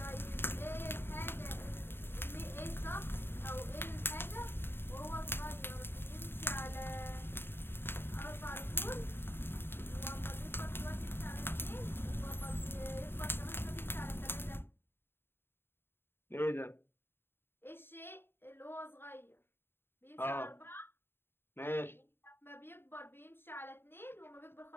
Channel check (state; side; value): late; right; 0.11 ms